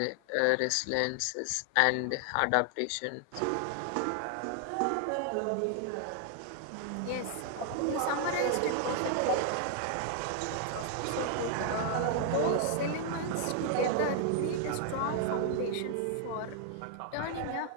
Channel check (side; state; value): both; different; correlation 0.00